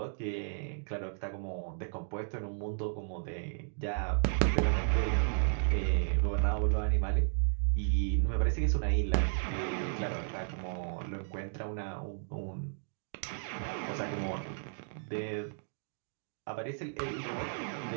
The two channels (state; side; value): silent; left; digital silence